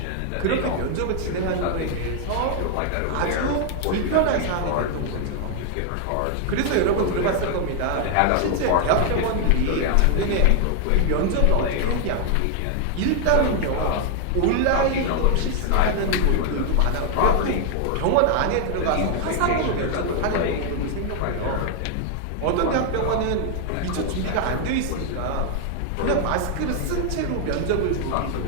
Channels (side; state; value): both; different; correlation 0.00